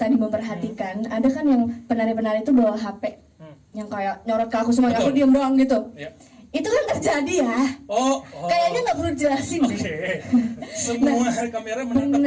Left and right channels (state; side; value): identical; both; correlation 1.00